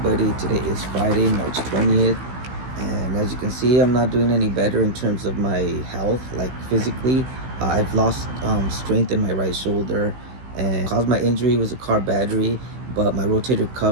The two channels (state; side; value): late; left; 16 ms